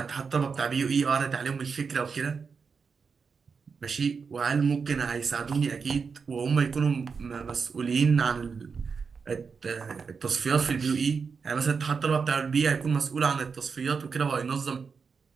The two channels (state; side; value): quieter; left; 5.5 dB